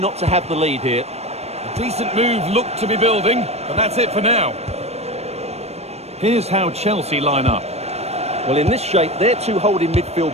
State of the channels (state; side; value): late; left; 0.31 ms